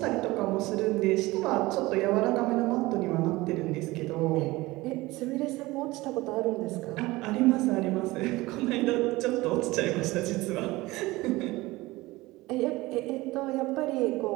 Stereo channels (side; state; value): left; quieter; 20.2 dB